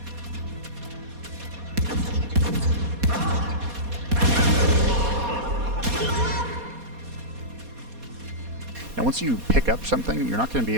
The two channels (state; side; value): late; left; 4.2 ms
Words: Now once you pick up something, you're not going to be